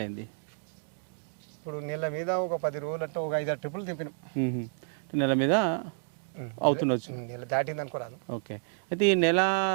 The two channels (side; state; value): left; silent; digital silence